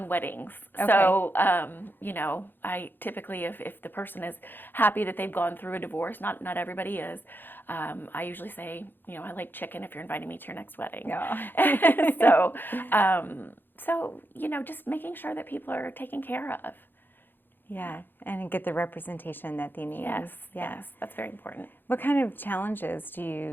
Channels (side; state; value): right; late; 0.096 ms